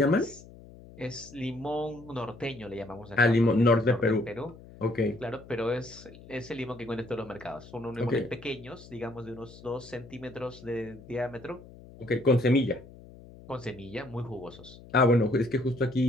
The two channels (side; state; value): left; noise; hum, 19 dB below the sound